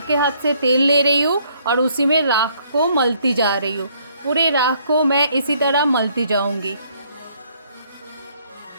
हाथ से तेल ले रही हूँ और उसी में राख को मलती जा रही हूँ। पूरे राख को मैं इसी तरह मलती जाऊँगी।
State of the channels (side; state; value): both; inverted; correlation -0.66